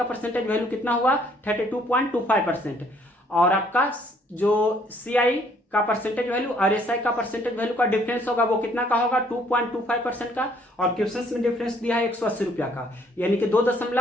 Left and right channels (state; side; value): normal; both; correlation 0.63